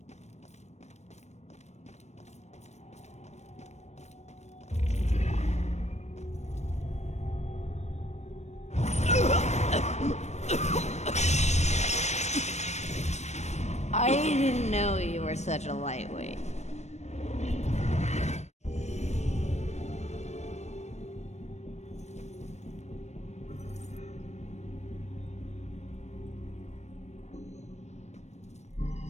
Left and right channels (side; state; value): right; late; 0.32 ms